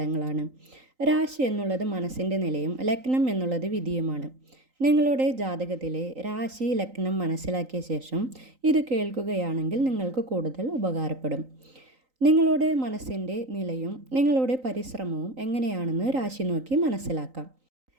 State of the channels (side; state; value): left; late; 3.9 ms